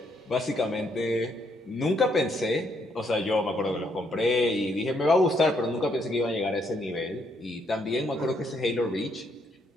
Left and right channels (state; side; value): normal; both; correlation 0.73